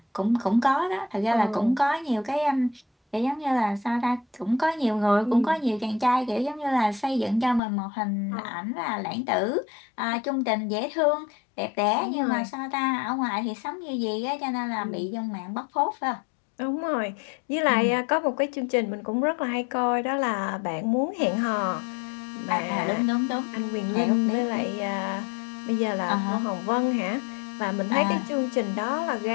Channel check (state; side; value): drops out; right; at 7.6 s